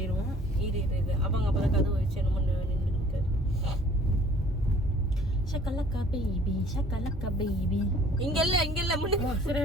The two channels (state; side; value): normal; both; correlation 0.54